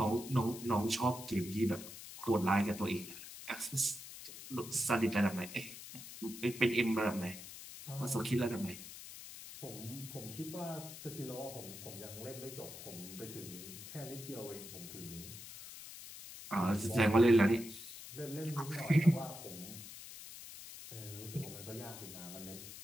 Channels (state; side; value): noise; left; hiss, 12 dB below the sound